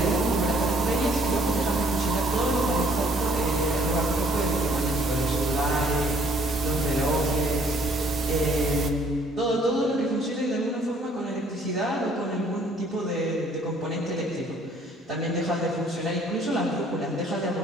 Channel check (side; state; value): both; normal; correlation 0.61